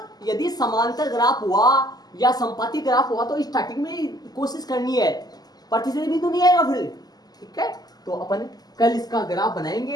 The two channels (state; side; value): late; right; 0.19 ms